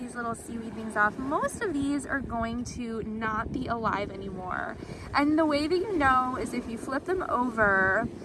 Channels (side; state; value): both; identical; correlation 1.00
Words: little seaweed things off. Most of these are going to not be alive anymore. And the way that you know is if you flip them over